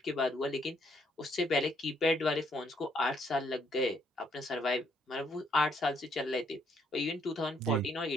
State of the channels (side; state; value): both; normal; correlation 0.70